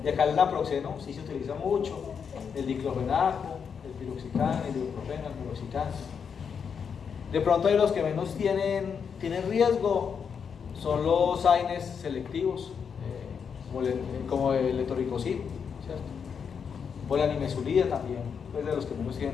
Y acá el naproxeno sí se utiliza mucho, el diclofenaco, el piroxicam, el ibuprofeno, el piroxicam. De pronto hay los que menos tienen riesgo, son los AINES selectivos, como el etoricosib, ¿cierto? O la nimesulida también, pues de los que menos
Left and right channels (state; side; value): quieter; right; 6.7 dB